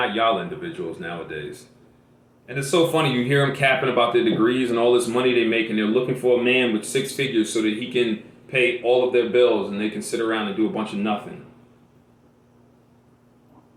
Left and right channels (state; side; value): identical; both; correlation 1.00